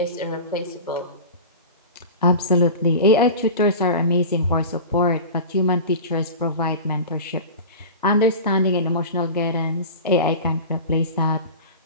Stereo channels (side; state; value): both; inverted; correlation -0.32